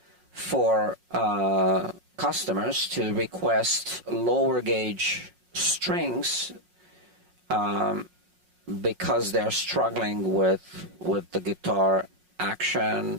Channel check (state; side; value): late; left; 5.5 ms